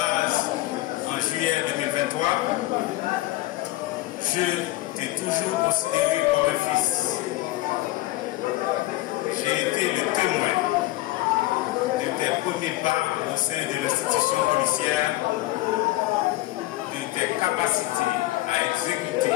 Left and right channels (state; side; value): quieter; right; 17.9 dB